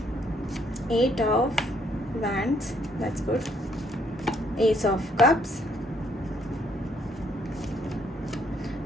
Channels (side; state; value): both; normal; correlation 0.69